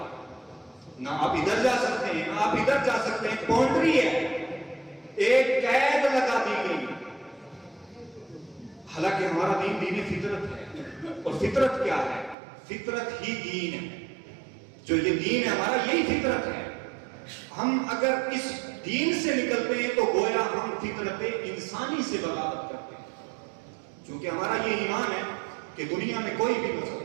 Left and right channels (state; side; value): drops out; left; at 12.4 s